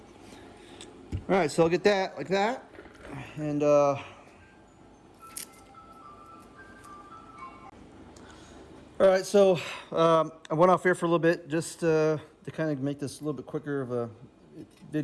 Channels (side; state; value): both; identical; correlation 1.00